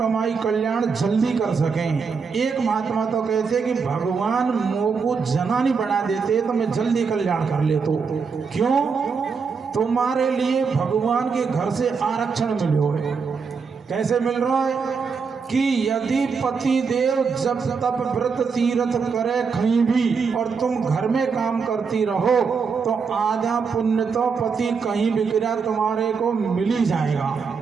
कल्याण जल्दी कर सकें। एक महात्मा तो कहते कि भगवान मोह को जना नहीं बना देते तो मैं जल्दी कल्याण कर ले। तो क्यों? तुम्हारे लिए भगवान के घर से आरक्षण मिले है। कैसे मिल रहा है? कि यदि पति देव जब तब व्रत तीर्थ करे कहीं भी और तुम घर में काम करती रहो तो आधा पुण्य तो पति कहीं भी गिरा तुम्हारे को मिल ही जाएगा,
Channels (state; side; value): quieter; left; 5.4 dB